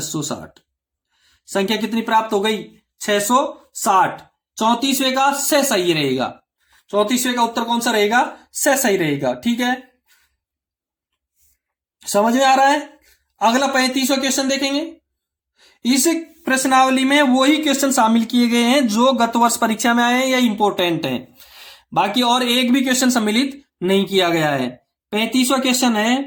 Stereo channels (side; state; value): both; identical; correlation 1.00